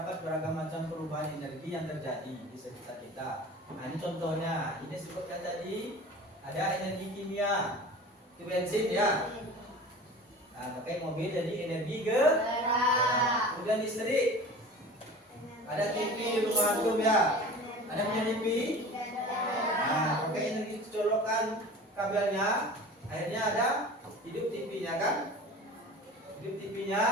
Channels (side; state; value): both; normal; correlation 0.39